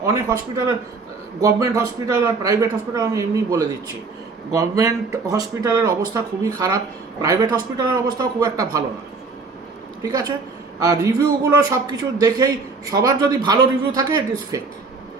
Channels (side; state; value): left; quieter; 4.3 dB